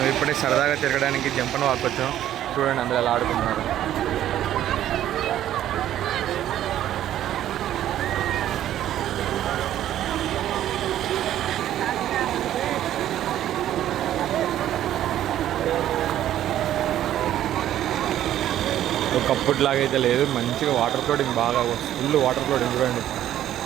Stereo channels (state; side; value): quieter; left; 12.0 dB